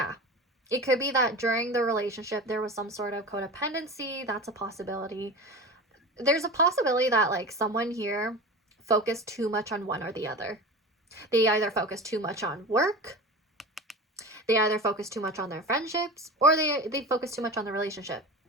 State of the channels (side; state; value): both; normal; correlation 0.31